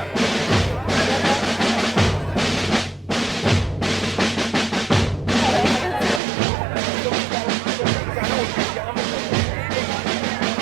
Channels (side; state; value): left; drops out; at 6.2 s